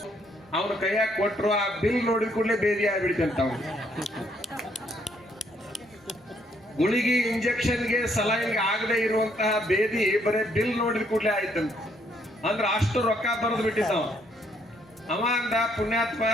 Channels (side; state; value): both; normal; correlation 0.70